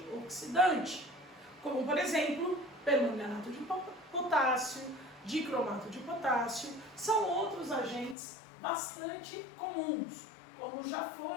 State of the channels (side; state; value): right; drops out; at 8.2 s